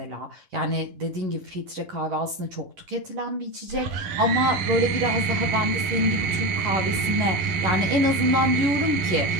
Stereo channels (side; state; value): left; late; 11 ms